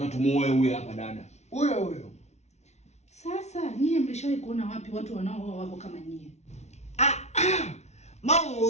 tumuoe huyu hapa dada. Huyo. Sasa nyie mlishawahi kuona wapi watu wanaooa wako kama nyie? Mama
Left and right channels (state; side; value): late; right; 0.32 ms